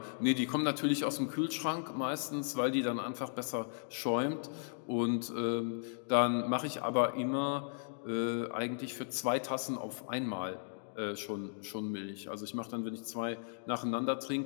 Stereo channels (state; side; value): silent; right; digital silence